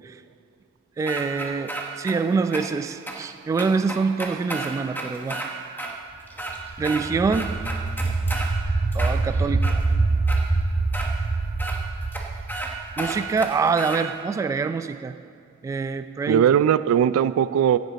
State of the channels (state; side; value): quieter; left; 4.7 dB